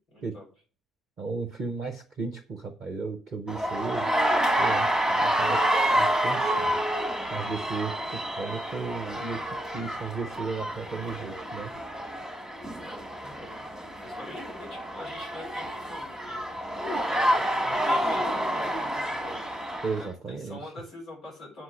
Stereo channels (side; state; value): both; normal; correlation 0.82